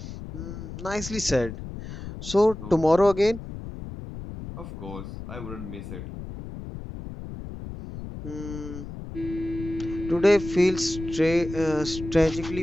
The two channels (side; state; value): left; noise; rumble, 10 dB below the sound